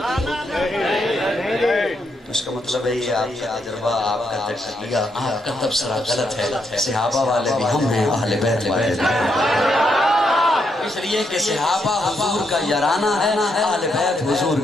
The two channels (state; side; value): normal; both; correlation 0.78